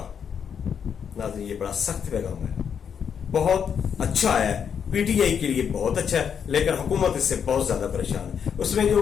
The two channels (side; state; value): right; quieter; 7.5 dB